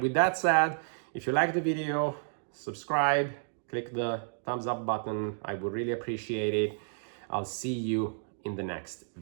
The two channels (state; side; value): silent; left; digital silence